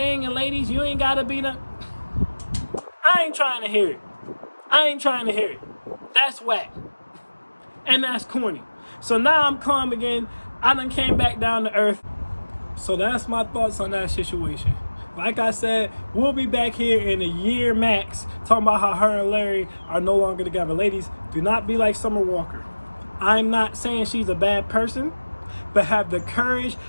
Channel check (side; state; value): both; inverted; correlation -1.00